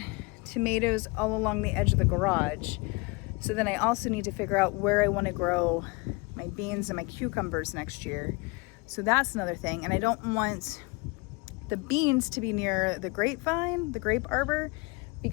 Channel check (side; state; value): right; quieter; 26.6 dB